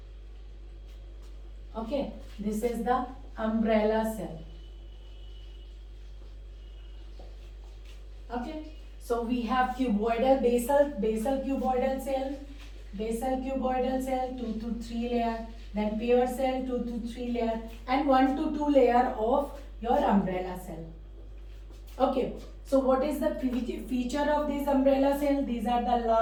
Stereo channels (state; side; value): identical; both; correlation 1.00